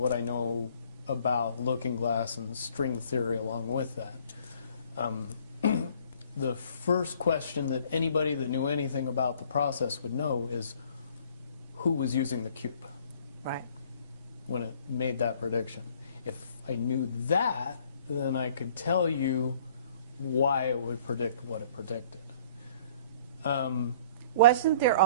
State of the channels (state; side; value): inverted; both; correlation -0.56